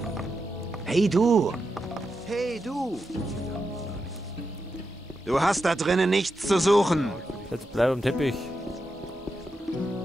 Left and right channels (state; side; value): normal; both; correlation 0.87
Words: Hey du! Hey du! Du hast da drinnen nichts zu suchen. Jetzt bleib am Teppich.